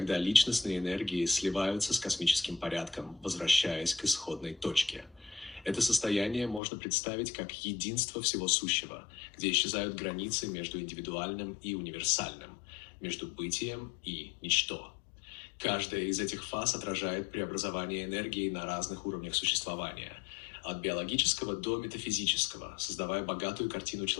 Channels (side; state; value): right; drops out; at 6.6 s